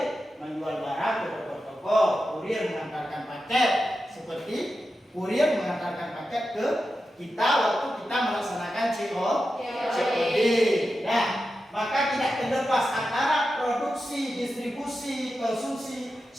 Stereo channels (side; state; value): both; normal; correlation 0.91